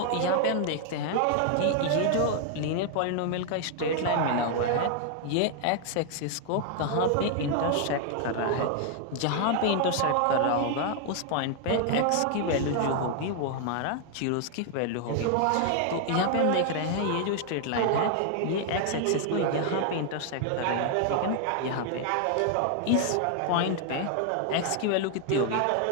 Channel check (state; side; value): different; both; correlation 0.00